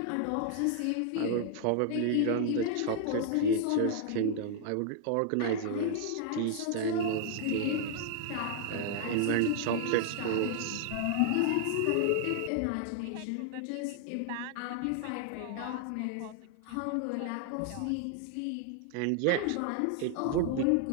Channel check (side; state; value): both; different; correlation 0.00